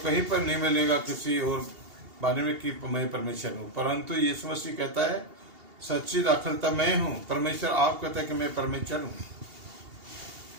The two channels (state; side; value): late; left; 2.8 ms